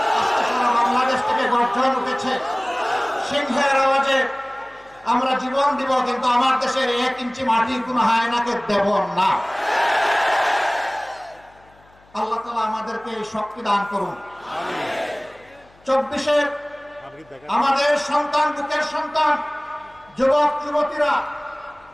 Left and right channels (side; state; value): left; noise; hum, 30 dB below the sound